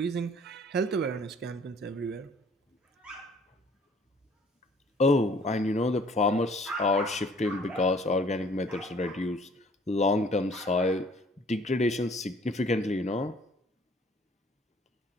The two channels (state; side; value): normal; both; correlation 0.56